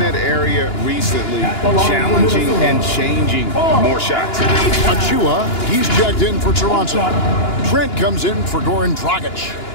area recently, challenging and changing more shots. Achua, he's checked in for Toronto. Trent comes in for Goran Dragic.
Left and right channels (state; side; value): late; right; 2.9 ms